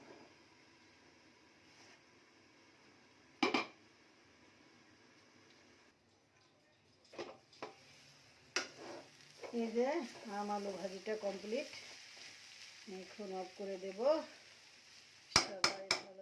এই যে আম আলু ভাজিটা কমপ্লিট, এখন অফ করে দেব। সবাই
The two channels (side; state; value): both; identical; correlation 1.00